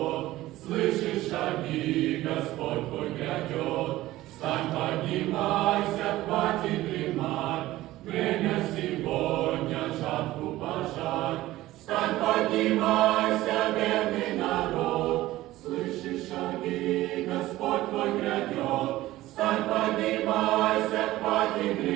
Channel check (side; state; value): left; quieter; 16.4 dB